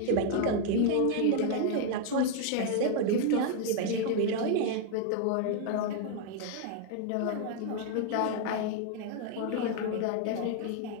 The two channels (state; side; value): different; both; correlation 0.00